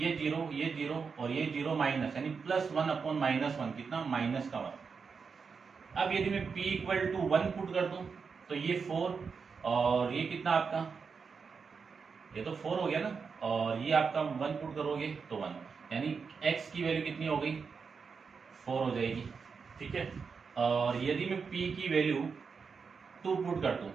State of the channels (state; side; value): quieter; left; 5.5 dB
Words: 0 और ये 0 माइनस, यानी प्लस 1 अपॉन माइनस 1, कितना, माइनस का 1। अब यदि मैं p इक्वल टू 1 पुट कर दूं तो ये 4 और ये कितना आपका, ये तो 4 हो गया ना, और ये आपका 1 पुट करोगे तो 1, यानी x की वैल्यू कितनी हो गई, 4 हो जाएगी। ठीक है, और यदि मैं p की वैल्यू 2 पुट कर दूं